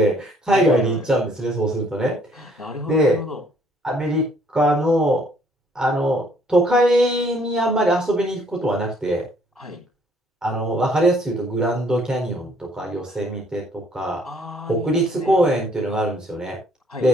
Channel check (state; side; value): normal; both; correlation 0.63